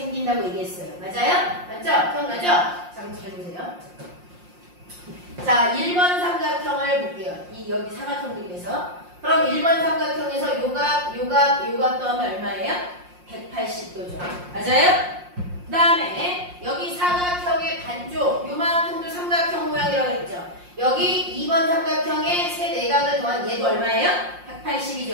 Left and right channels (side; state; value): left; late; 5.6 ms